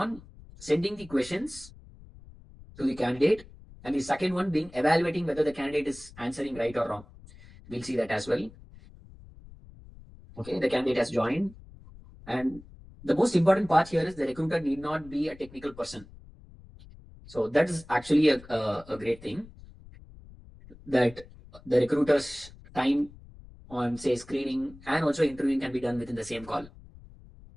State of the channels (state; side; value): noise; left; rumble, 20 dB below the sound